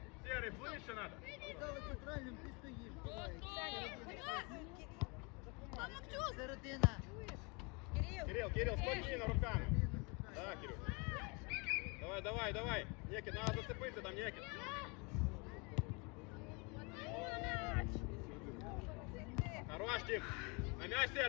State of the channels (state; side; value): quieter; right; 30.6 dB